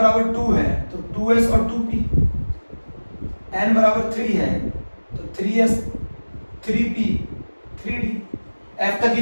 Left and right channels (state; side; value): inverted; both; correlation -1.00